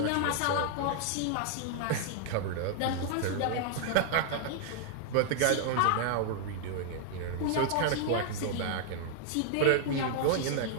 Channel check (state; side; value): different; both; correlation -0.01